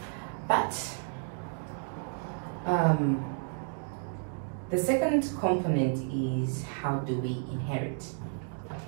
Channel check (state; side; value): silent; left; 57 dB below the other